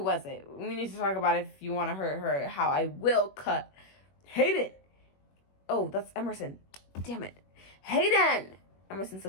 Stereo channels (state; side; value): late; right; 21 ms